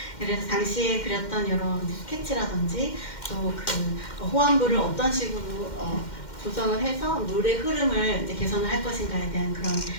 그래서 당시에 그렸던 여러 스케치라든지 또 그 호환부를 어떤 식으로 조성을 해서 물의 흐름을 이제 개선을 할 것인가에 대한 그런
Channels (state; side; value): late; right; 2.1 ms